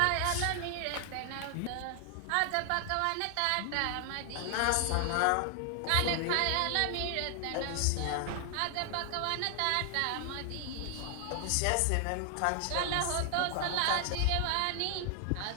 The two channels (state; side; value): different; both; correlation 0.00